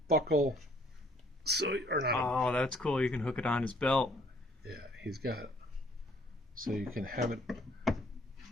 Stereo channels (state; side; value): normal; both; correlation 0.62